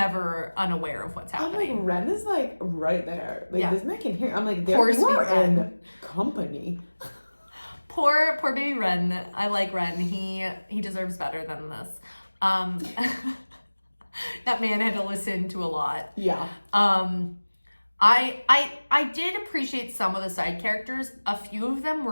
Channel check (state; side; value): inverted; both; correlation -1.00